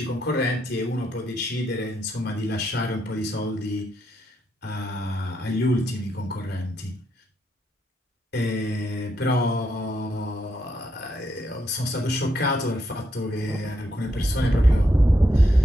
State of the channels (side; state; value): both; normal; correlation 0.79